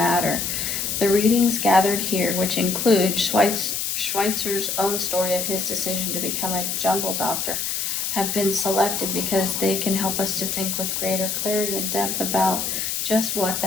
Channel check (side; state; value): left; noise; hiss, 1 dB below the sound